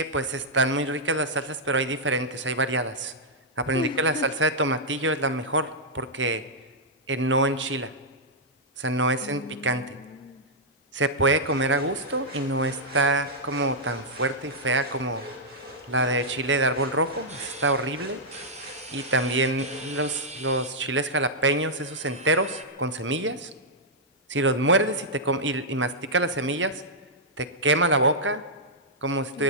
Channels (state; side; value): normal; both; correlation -0.08